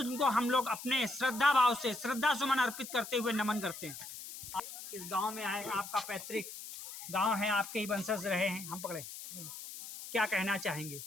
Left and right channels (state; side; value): noise; left; hiss, 11 dB below the sound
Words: हम लोग अपने श्रद्धा भाव से श्रद्धा सुमन अर्पित करते हुए नमन करते हैं। आप इस गांव में आए, आपका पैतृक गांव है, आपके ही वंशज रहे हैं, हम पकड़े, क्या कहना चाहेंगे?